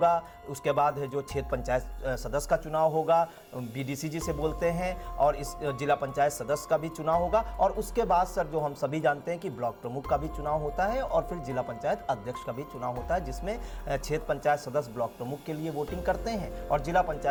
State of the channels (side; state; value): both; identical; correlation 1.00